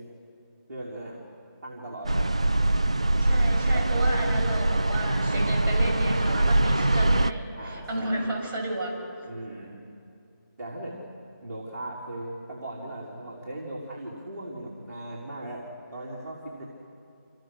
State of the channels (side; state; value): both; inverted; correlation -0.92